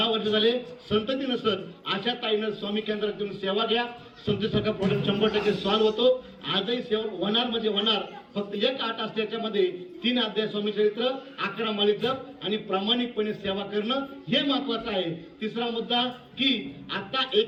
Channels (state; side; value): identical; both; correlation 1.00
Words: वर्ष झाले, संतती नसन, अशा ताईनं स्वामी केंद्रात येऊन सेवा घ्या. संततीसारखा प्रॉब्लेम 100% सॉल्व्ह होतो. आजही सेवा होणार म्हणजे होणार. फक्त एक आठ असते, त्याच्यामध्ये 3 अध्याय स्वामी चरित्र, 11 माळी जप आणि प्रामाणिकपणे सेवा करणं हे महत्वाचं आहे. तिसरा मुद्दा की आता